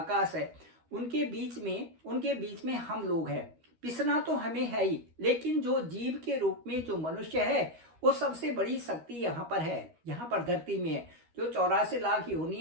है, उनके बीच में हम लोग हैं। पिसना तो हमें है ही, लेकिन जो जीव के रूप में जो मनुष्य है वो सबसे बड़ी शक्ति यहाँ पर है, यहाँ पर धरती में है। जो 84 लाख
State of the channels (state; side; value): late; left; 13 ms